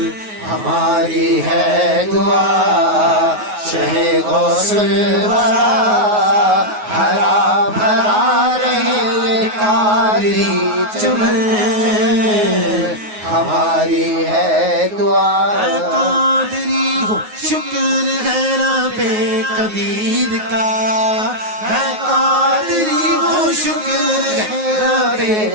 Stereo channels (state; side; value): late; left; 9.4 ms